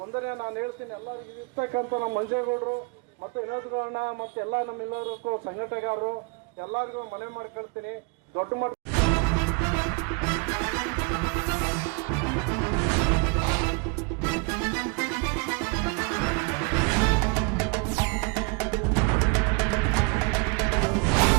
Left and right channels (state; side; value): quieter; left; 31.2 dB